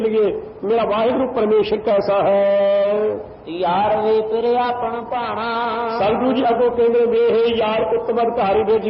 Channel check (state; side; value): identical; both; correlation 1.00